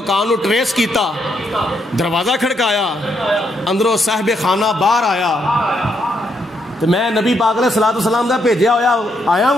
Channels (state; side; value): normal; both; correlation 0.77